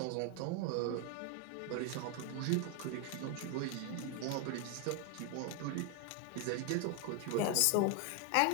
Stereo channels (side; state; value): both; different; correlation 0.01